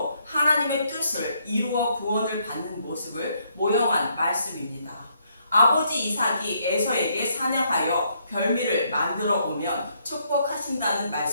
하나님의 뜻을 이루어 구원을 받는 모습을 모형한 말씀입니다. 아버지 이삭이 에서에게 사냥하여 별미를 만들어 오면 축복하신다는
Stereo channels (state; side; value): inverted; both; correlation -0.72